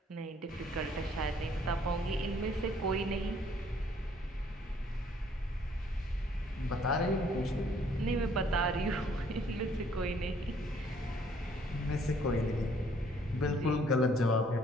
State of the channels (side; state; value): both; normal; correlation 0.62